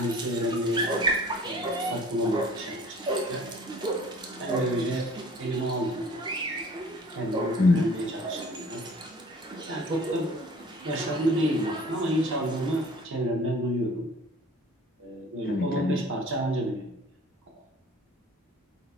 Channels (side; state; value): both; normal; correlation 0.49